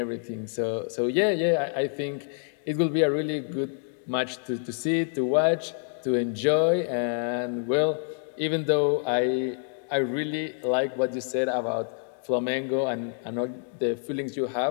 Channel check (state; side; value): silent; right; 60 dB below the other